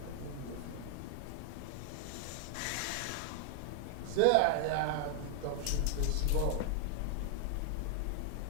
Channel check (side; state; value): both; different; correlation 0.00